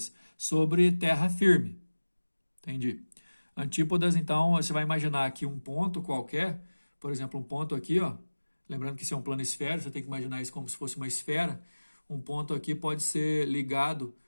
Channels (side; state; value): both; inverted; correlation -1.00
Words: sobre terra firme. Entendi. Antípodas, então, você vai imaginar aqui um ponto qualquer, por exemplo, um ponto aqui, ó. Lembrando que isso é um plano esférico, você tem que imaginar isso como se fosse uma esfera. Um ponto aqui pode ser ligado,